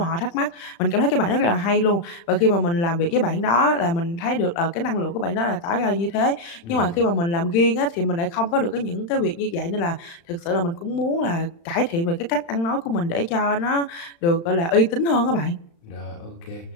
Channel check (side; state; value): right; late; 35 ms